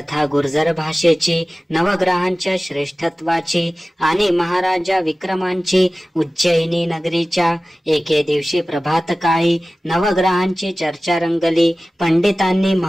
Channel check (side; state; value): both; normal; correlation 0.97